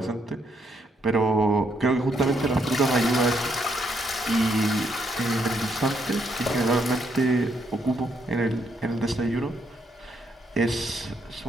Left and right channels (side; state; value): both; normal; correlation 0.75